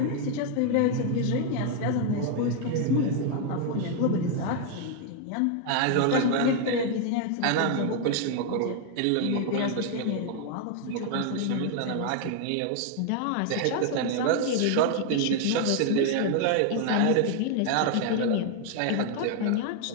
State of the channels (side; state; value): both; different; correlation 0.00